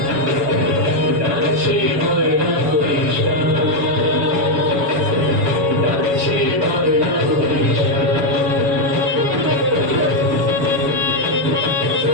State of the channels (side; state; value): left; late; 7.1 ms